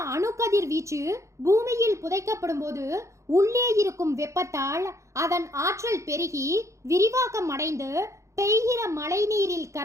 அணுக்கதிர் வீச்சு பூமியில் புதைக்கப்படும் போது உள்ளே இருக்கும் வெப்பத்தால் அதன் ஆற்றல் பெருகி விரிவாக்கம் அடைந்து பெய்கிற மழை நீரில்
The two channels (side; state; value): left; late; 0.15 ms